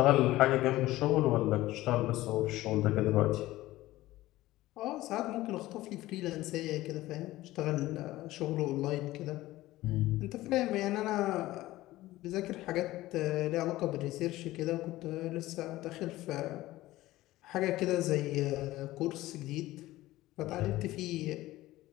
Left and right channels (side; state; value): right; quieter; 16.9 dB